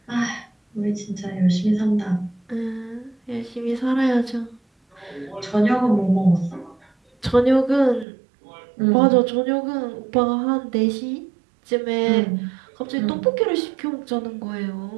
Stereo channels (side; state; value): left; drops out; at 8.1 s